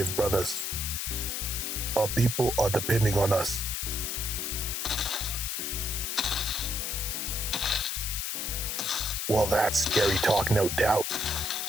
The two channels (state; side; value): noise; left; hiss, 2 dB below the sound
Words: brothers. Our people are depending on us. Well, that's scary talk, no doubt.